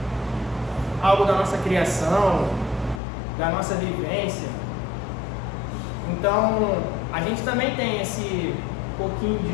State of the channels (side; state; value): right; drops out; at 3.0 s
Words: algo da nossa criação, da nossa vivência. Então, a gente também tem esse pouquinho